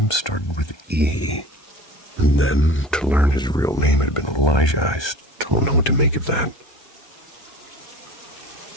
started with E, and then, to learn his real name had been Elijah, I still don't know what to make of that.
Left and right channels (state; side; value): late; right; 1.2 ms